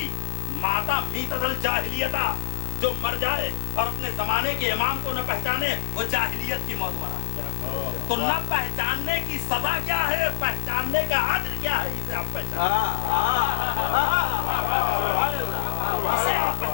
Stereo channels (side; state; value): right; silent; digital silence